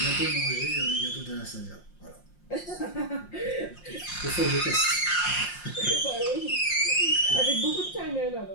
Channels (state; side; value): late; right; 5.6 ms